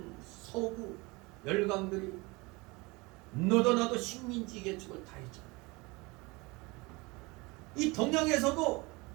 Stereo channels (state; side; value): quieter; left; 24.8 dB